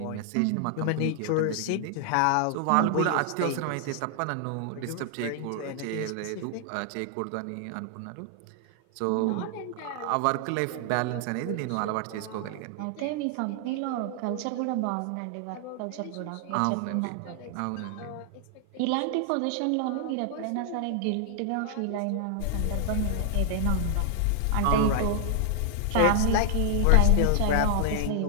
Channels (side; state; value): both; different; correlation 0.00